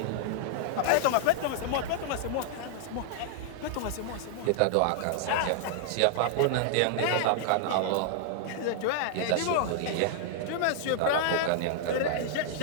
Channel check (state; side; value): different; both; correlation -0.01